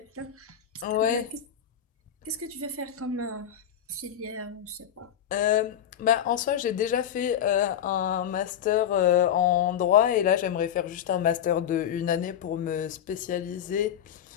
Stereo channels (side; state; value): right; quieter; 9.6 dB